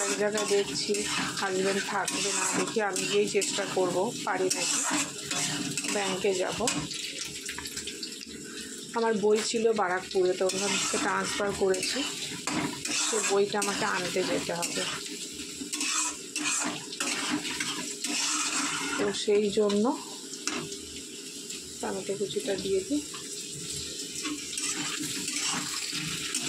এক জায়গায়, দেখছি হাজব্যান্ড থাকবে না, দেখি আমি গিয়েই চেষ্টা করব পারি নাকি। ব্যাংকে যাব, আমার বই ছিল বারাকপুরে, তো ওখান থেকে ট্রান্সফার করেছি, সে বইটা আমাকে আনতে যেতে হবে। তো সেই জন্য টমেটো কুচিটা দিয়ে দিই,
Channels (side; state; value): both; identical; correlation 1.00